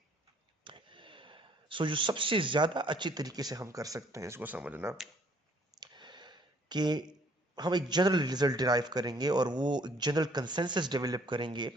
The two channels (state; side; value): normal; both; correlation 0.62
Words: So जो सबसे ज्यादा अच्छी तरीके से हम कर सकते हैं इसको समझना कि हम एक जनरल रिजल्ट डिराइव करेंगे और वो एक जनरल कंसेंसस डेवलप करेंगे,